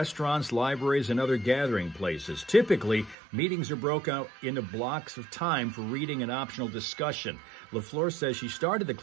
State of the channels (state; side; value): drops out; left; at 3.2 s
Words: libraries, and other gathering places. Typically, meetings are broken out into blocks of time for reading and optional discussion. LaFleur says she started the